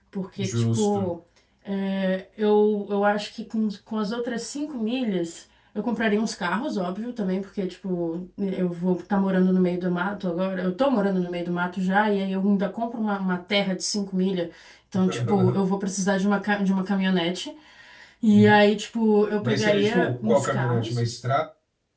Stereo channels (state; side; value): identical; both; correlation 1.00